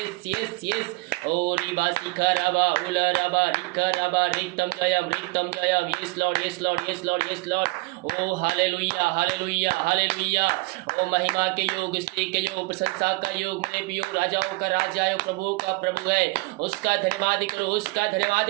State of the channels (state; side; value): quieter; left; 24.7 dB